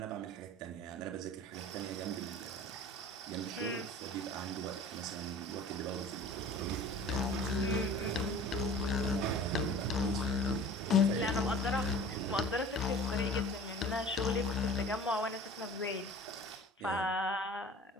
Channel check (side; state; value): both; normal; correlation 0.43